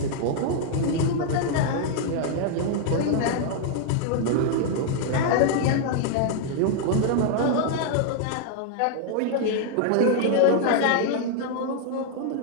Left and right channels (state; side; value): different; both; correlation 0.00